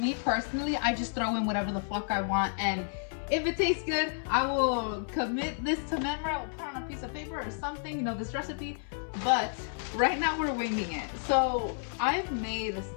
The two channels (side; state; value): right; silent; 57 dB below the other